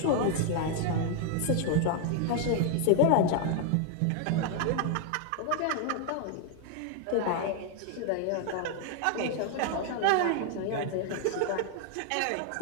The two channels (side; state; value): both; different; correlation 0.00